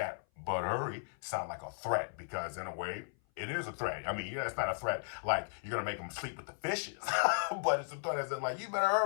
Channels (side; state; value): right; silent; 54 dB below the other